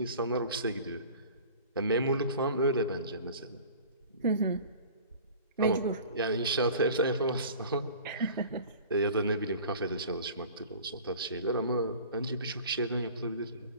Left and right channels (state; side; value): inverted; both; correlation -0.43